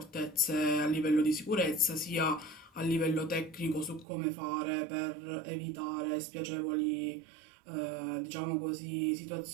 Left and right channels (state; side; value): drops out; left; at 4.0 s